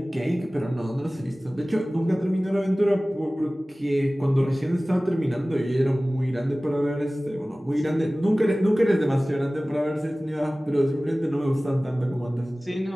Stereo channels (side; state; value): both; normal; correlation 0.98